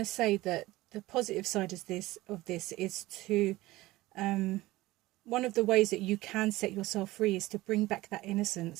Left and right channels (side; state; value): left; quieter; 18.5 dB